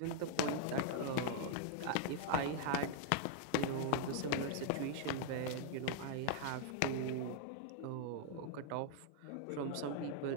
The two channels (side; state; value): both; different; correlation -0.01